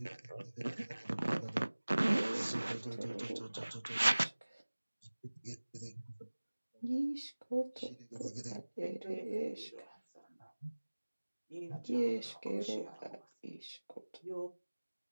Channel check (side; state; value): both; inverted; correlation -1.00